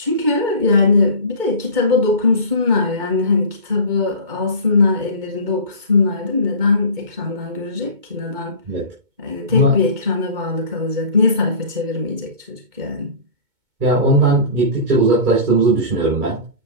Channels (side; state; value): left; late; 2.2 ms